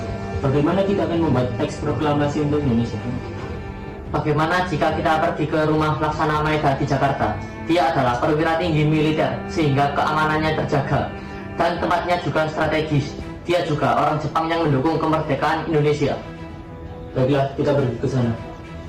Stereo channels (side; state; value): both; identical; correlation 1.00